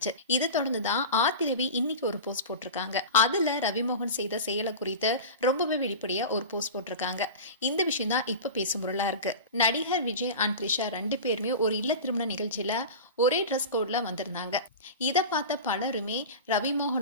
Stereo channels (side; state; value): both; inverted; correlation -0.30